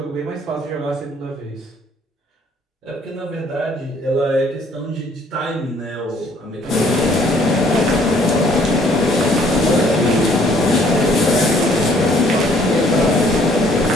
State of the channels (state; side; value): normal; both; correlation 0.61